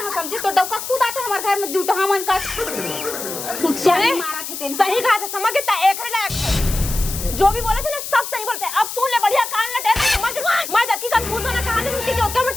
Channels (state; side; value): noise; left; hiss, 7 dB below the sound